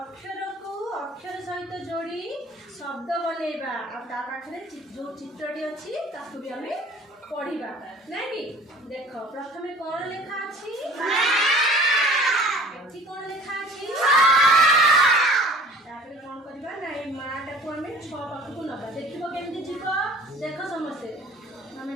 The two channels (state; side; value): normal; both; correlation 0.48